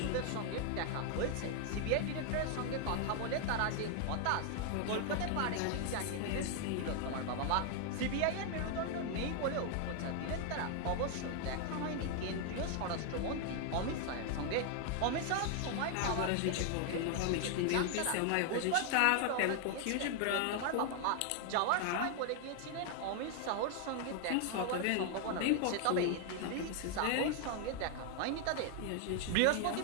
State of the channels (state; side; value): different; both; correlation 0.00